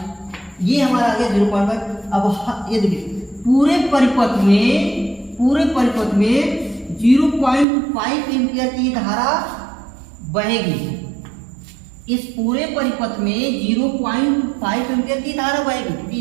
ये हमारा आ गया 0.5। अब ये देखिए पूरे परिपथ में 0.5 एम्पियर की धारा बहेगी। इस पूरे परिपथ में 0.5 एम्पियर की धारा बहेगी, क्योंकि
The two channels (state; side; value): drops out; left; at 7.7 s